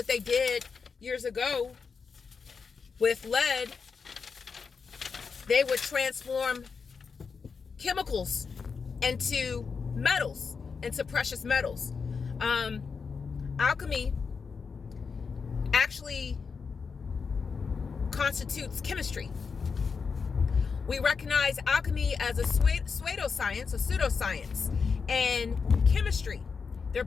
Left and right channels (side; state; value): right; quieter; 5.4 dB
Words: they did years ago with lead, they would transform chemicals into metals, into precious metals. Alchemy actually constitutes chemistry. We recognize alchemy as a pseudoscience, and chemistry. They're